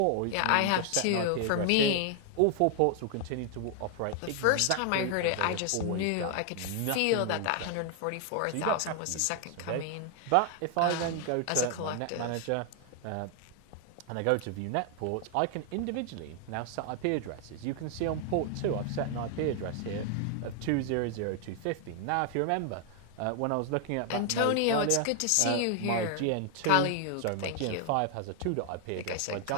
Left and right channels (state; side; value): different; both; correlation 0.00